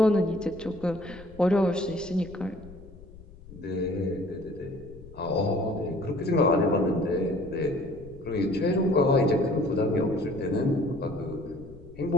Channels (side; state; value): left; noise; rumble, 19 dB below the sound